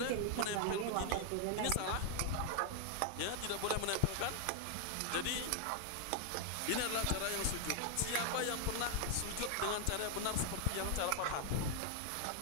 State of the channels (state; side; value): different; both; correlation 0.00